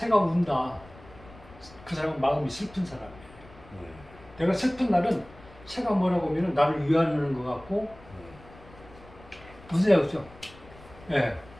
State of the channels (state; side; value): noise; left; rumble, 21 dB below the sound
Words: 운다. 그 사람은 마음이 슬픈 사람이에요. 내가 슬픈 날은 새가 뭐라고 하면 나를 위하는 것 같고 무슨 얘기죠? 예.